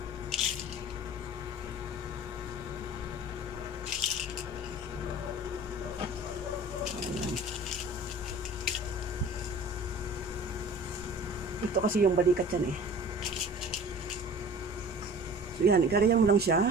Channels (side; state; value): both; normal; correlation 0.42